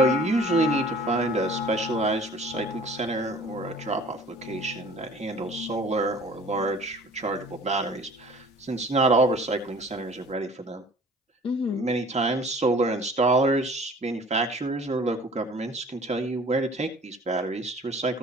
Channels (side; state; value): both; normal; correlation 0.49